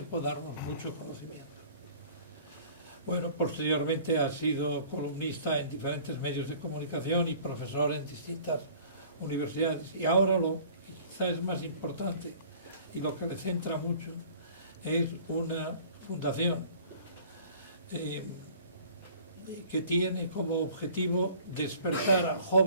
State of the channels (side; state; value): both; inverted; correlation -0.49